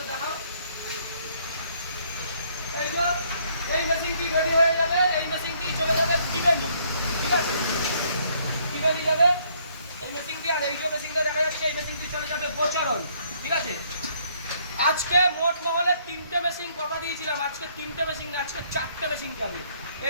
দেখাও এই যে এই মেশিনটি রেডি হয়ে যাবে এই মেশিনটি চলে যাবে টিবেনি ঠিক আছে টিবেনি যাবে এই মেশিনটি আর এই যে মেশিনটা দেখা যাচ্ছে এই মেশিনটি চলে যাবে বোচরণ ঠিক আছে আজকে মোট মহলে 3টে মেশিন কথা দিয়েছিলাম আজকে 3টে মেশিন না আজকে 4টে মেশিন যাবে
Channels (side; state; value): both; inverted; correlation -0.66